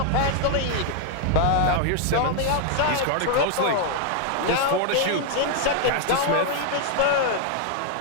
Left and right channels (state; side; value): different; both; correlation 0.00